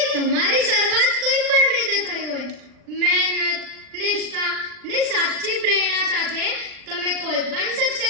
તમારી શરૂઆત કોઈ પણ રીતે થઈ હોય, મહેનત, નિષ્ઠા ને સાચી પ્રેરણા સાથે તમે કોઈ પણ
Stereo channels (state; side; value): late; left; 39 ms